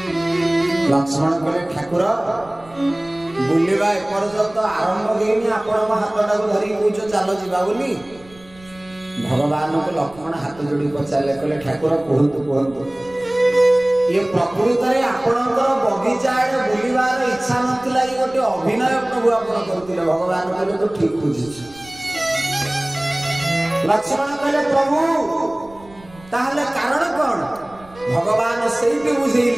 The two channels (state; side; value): noise; right; rumble, 24 dB below the sound